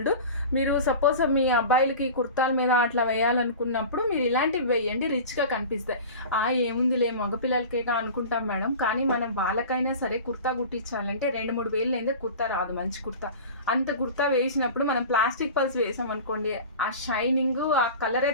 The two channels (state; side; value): inverted; both; correlation -0.35